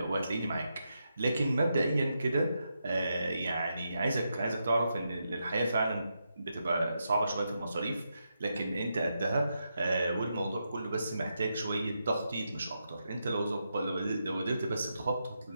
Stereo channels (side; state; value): both; inverted; correlation -0.84